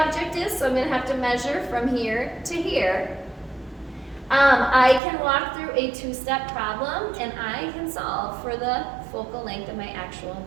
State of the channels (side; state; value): left; drops out; at 5.0 s